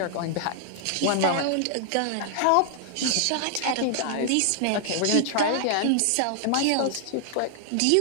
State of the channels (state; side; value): different; both; correlation 0.00